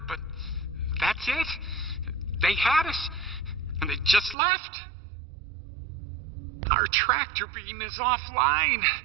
But that's it. They had us, and they just left. Our tractor beam is offline.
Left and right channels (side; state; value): left; drops out; at 4.4 s